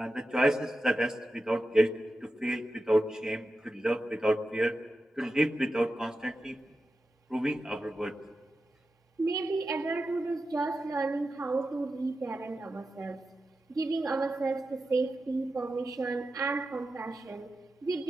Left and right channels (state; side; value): normal; both; correlation 0.91